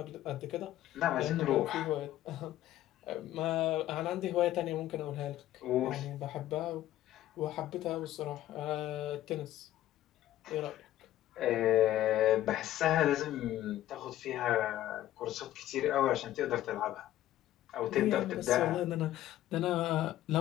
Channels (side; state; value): right; quieter; 13.7 dB